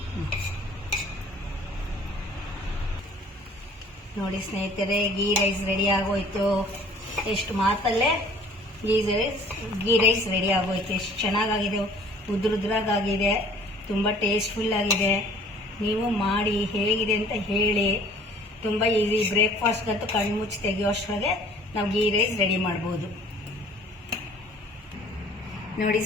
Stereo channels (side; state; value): both; normal; correlation 0.53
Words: ನೋಡಿ ಸ್ನೇಹಿತರೆ, ಗೀ ರೈಸ್ ರೆಡಿ ಆಗೋಯ್ತು. ಎಷ್ಟು ಮಾತಲ್ಲೇ ಗೀ ರೈಸ್ ರೆಡಿ ಆಗೋಯ್ತು. ಎಷ್ಟು ಚೆನ್ನಾಗಾಗಿದೆ, ಉದ್ರುದ್ರಾಗಿದೆ, ತುಂಬ ಟೇಸ್ಟ್ಫುಲ್ ಆಗಿದೆ. ನೀವು ಮಾಡಿ ಹೇಗಿದೆ ಅಂತ ಹೇಳಿ. ತುಂಬ ಈಸಿ. ಬ್ರೇಕ್ಫಾಸ್ಟ್ಗಂತೂ ಕಣ್ಣು ಮುಚ್ಚಿ ತೆಗೆಯೋಷ್ಟರೊಳಗೆ ನಾವು ಗೀ ರೈಸ್ ರೆಡಿ ಮಾಡ್ಬೋದು. ನೋಡಿ